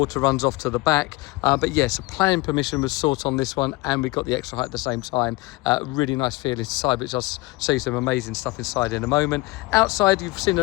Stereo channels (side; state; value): right; quieter; 22.6 dB